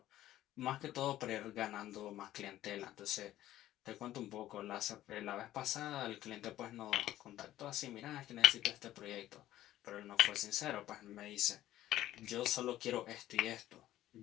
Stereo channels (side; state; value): right; quieter; 13.9 dB